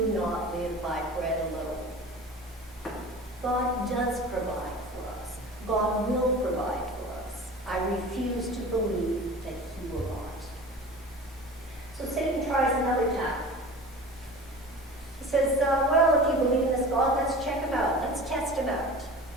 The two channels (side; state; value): both; normal; correlation 0.37